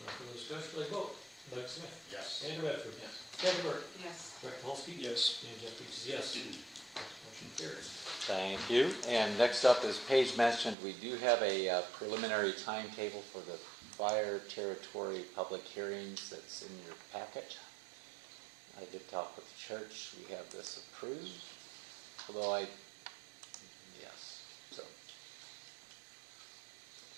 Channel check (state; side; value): drops out; left; at 10.8 s